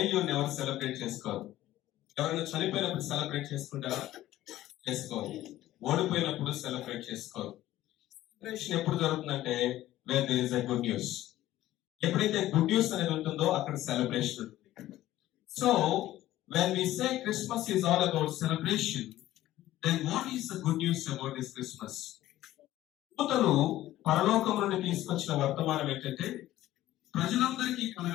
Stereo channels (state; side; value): quieter; right; 14.7 dB